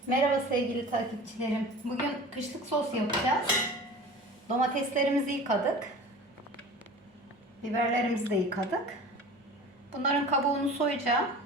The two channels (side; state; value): both; normal; correlation 0.39